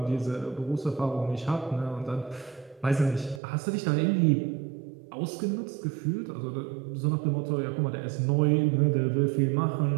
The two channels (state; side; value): drops out; left; at 3.4 s